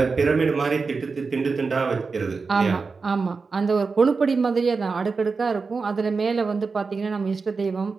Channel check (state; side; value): quieter; left; 4.6 dB